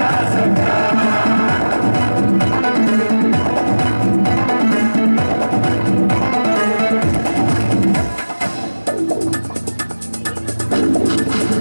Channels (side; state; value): both; inverted; correlation -1.00